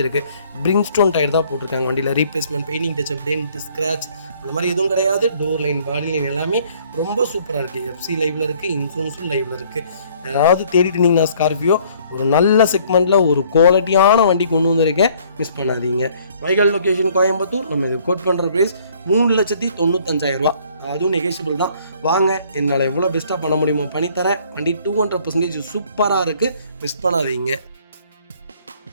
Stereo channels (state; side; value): inverted; both; correlation -0.60